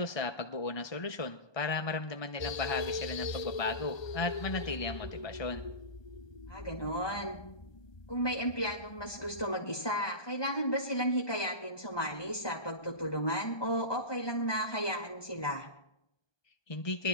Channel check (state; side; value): late; right; 1.2 ms